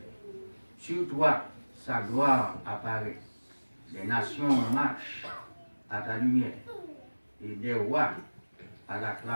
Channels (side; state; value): both; inverted; correlation -1.00